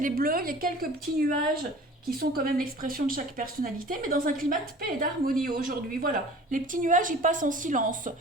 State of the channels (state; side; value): normal; both; correlation 0.44